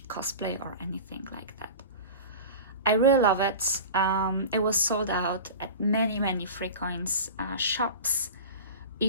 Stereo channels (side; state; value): both; inverted; correlation -0.33